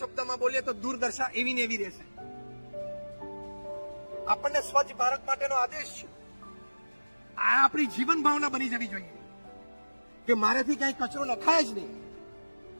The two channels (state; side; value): inverted; both; correlation -1.00